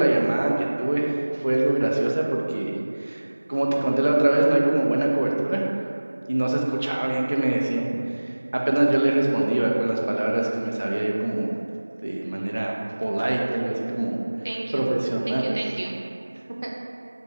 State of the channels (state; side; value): inverted; both; correlation -1.00